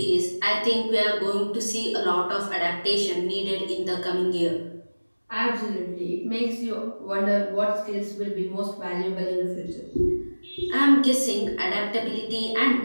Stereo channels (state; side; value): inverted; both; correlation -1.00